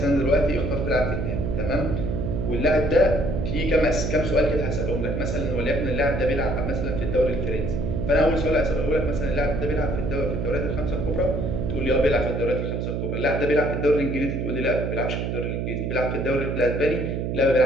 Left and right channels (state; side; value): noise; right; hum, 2 dB below the sound